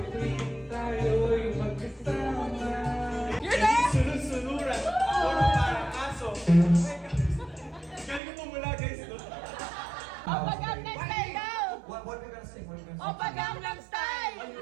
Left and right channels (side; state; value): left; drops out; at 8.2 s